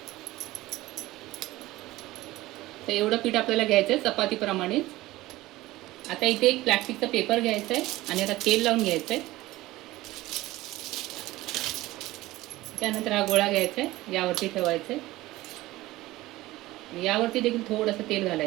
तर एवढं पीठ आपल्याला घ्यायचं आहे चपातीप्रमाणेच. आता इथे एक प्लास्टिकचा पेपर घ्यायचा आहे आणि आता तेल लावून घ्यायचं आहे. त्यानंतर हा गोळा घ्यायचा आहे, यावरती ठेवायचं आहे. यावरती देखील थोडंसं तेल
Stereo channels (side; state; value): left; quieter; 17.8 dB